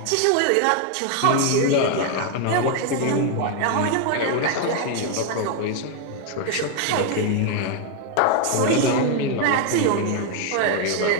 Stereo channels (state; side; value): different; both; correlation 0.01